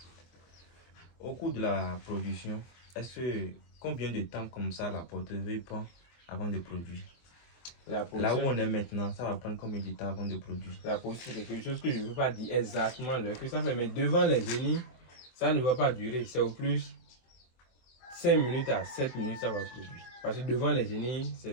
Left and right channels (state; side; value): late; right; 24 ms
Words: Au cours de la production, combien de temps comme ça la portefeuille prend avant de produire? Là où on est maintenant, ça va prendre combien de temps avant de produire? La production, c'est quelque chose que je ne veux pas dire exactement l'heure que ça fait, mais devant les génies, ça ne va pas durer. C'est au plus 5 minutes à 7 minutes, ça va produire. Parce que devant les génies,